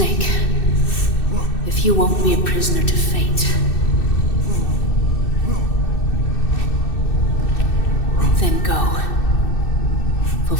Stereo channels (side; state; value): right; late; 2.6 ms